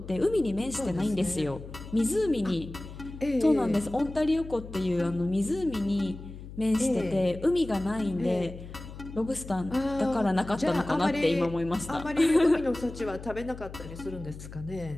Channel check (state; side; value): noise; left; hum, 13 dB below the sound